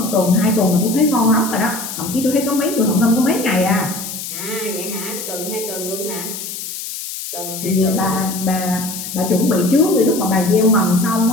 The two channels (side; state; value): left; noise; hiss, 8 dB below the sound